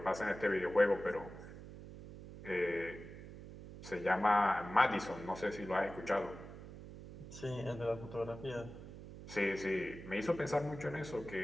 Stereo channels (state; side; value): noise; right; hum, 13 dB below the sound